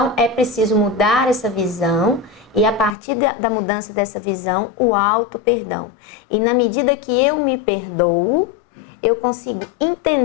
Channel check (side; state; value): right; drops out; at 3.0 s